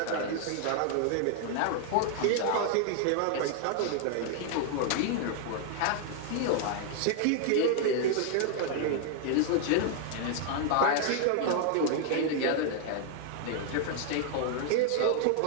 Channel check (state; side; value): different; both; correlation 0.00